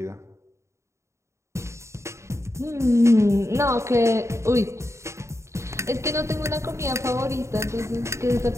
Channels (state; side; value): late; left; 0.14 ms